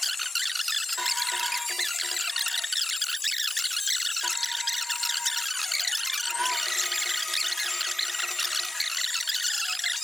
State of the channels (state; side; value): normal; both; correlation 0.94